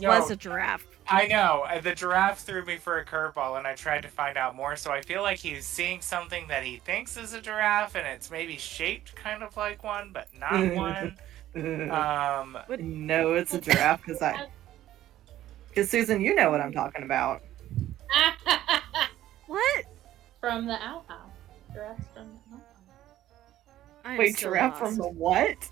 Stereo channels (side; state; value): left; quieter; 13.4 dB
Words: don't- a giraffe. I know. The giraffe threw me for a curveball, and I tried to find out more, so I feel like he's seeing something that he thinks is a giraffe, and it's maybe shaped kind of like one, but not one. No, it's a giraffe because Susan, you know what I'm talking about. What? From the outhouse. Giraffes from the outhouse. I am Wait, so giraffe lost. from the what?